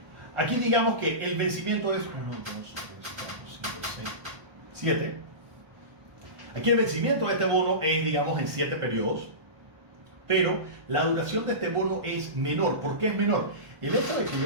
Aquí digamos que el vencimiento es 1, 2, 3, 4, 5, 6, 7. Aquí el vencimiento de este bono es, digamos, en 7 periodos, pero la duración de este bono es menor. ¿Por qué es menor? El hecho de que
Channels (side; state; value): left; late; 1.1 ms